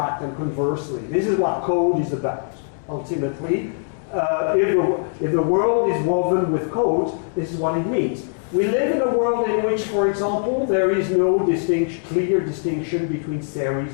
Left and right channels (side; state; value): right; silent; digital silence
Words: and conversely. This is what code is about, ultimately. If the world is woven with code, this is what it means. We live in a world in which, for example, there is no clear distinction between